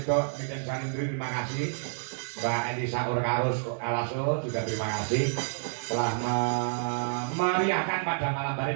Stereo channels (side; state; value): left; silent; 59 dB below the other